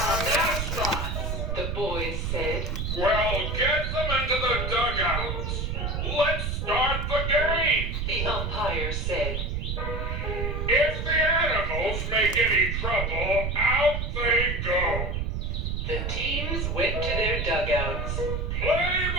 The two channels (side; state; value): right; noise; rumble, 2 dB below the sound